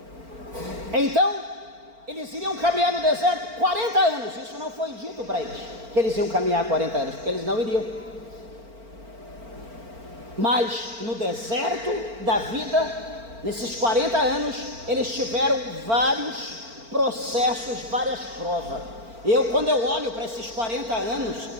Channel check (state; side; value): late; left; 4.4 ms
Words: Então eles iriam caminhar no deserto 40 anos, isso não foi dito para eles, que eles iam caminhar 40 anos, porque eles não iriam. Mas no deserto da vida, nesses 40 anos, eles tiveram vários processos, várias provas. Quando eu olho para esses 40 anos